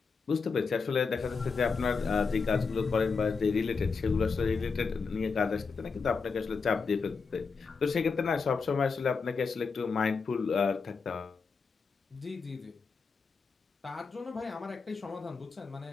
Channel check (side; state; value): right; quieter; 5.0 dB